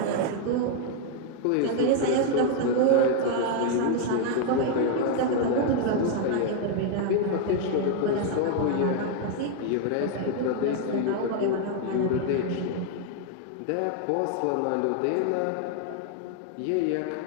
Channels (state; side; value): different; both; correlation 0.00